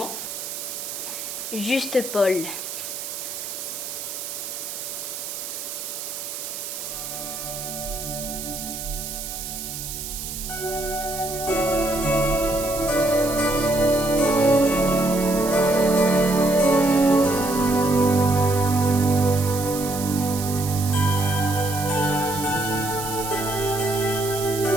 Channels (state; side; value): noise; right; hiss, 7 dB below the sound